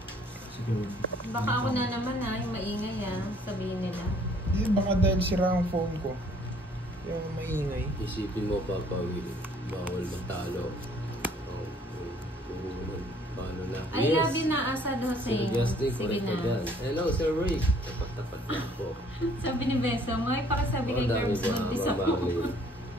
Siguro. Baka ako na naman yung maingay sabihin nila. Eh, baka dahil sira ang phone ko. Yung maingay. Isipin mo, Papa Will, bawal matalo. Oh, paano na? I love you na, Asad Sir Hussein. Justin, Sige correct ka na. dyan. Hello, Sir Rick. Tapat-tapat na po. Sabi ni Beso, may pakisabi kay Dami Curbs ba, buntis Ma'am ako. Marlene?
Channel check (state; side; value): normal; both; correlation 0.60